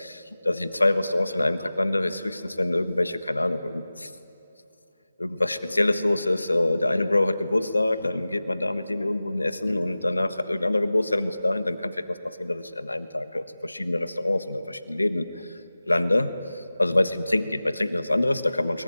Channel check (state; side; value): inverted; both; correlation -0.96